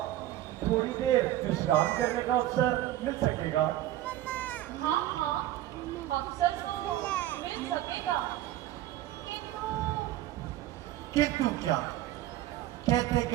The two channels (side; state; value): left; quieter; 14.0 dB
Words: थोड़ी देर विश्राम करने का अवसर मिल सकेगा? हाँ, अवसर तो मिल सकेगा, किंतु क्या? कहते